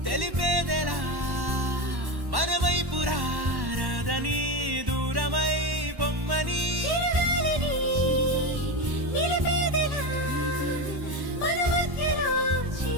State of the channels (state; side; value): late; left; 1.1 ms